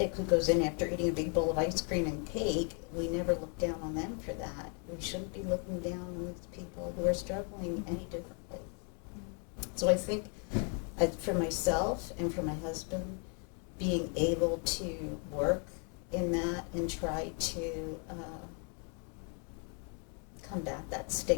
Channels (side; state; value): right; quieter; 36.4 dB